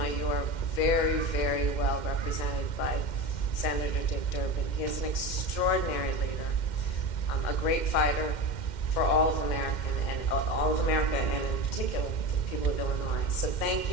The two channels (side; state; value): right; late; 2.1 ms